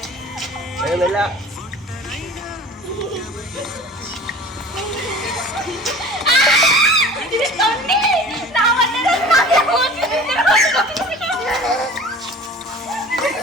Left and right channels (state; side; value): normal; both; correlation 0.42